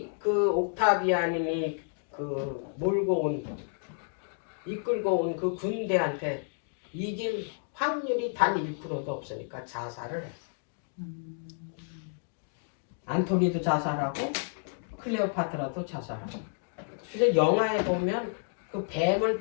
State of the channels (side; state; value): right; silent; digital silence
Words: 그 옥타비안이 그 몰고 온 이끌고 온 그 군대한테 이길 확률이 단 1%도 없으니까 자살을 했어. 안토니도 자살하고 클레오파트라도 자살하고. 그래서 영화에 보면 그 뱀을